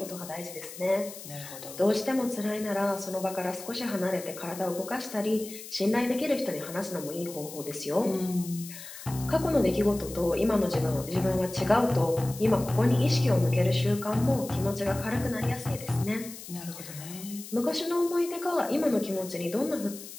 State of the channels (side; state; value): left; noise; hiss, 13 dB below the sound